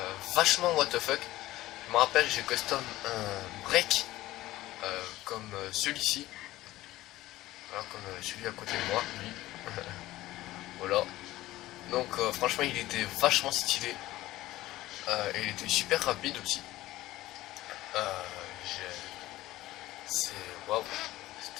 vachement what the fuck. Je me rappelle, j'ai custom un break comme celui-ci, voilà, comme celui à côté de moi, lui. Voilà. Donc franchement, il était vachement stylé et il était super rapide aussi. C'est waouh,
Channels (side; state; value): right; quieter; 16.5 dB